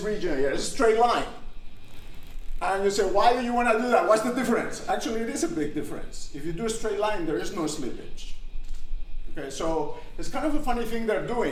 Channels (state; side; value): identical; both; correlation 1.00